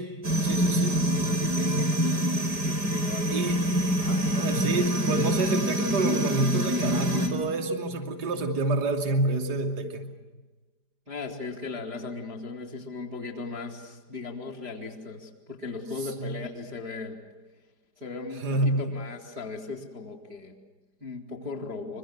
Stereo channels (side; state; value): left; late; 4.9 ms